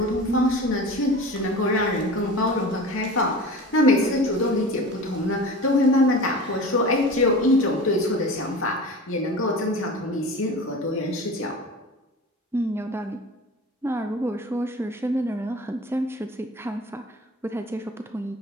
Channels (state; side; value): normal; both; correlation 0.35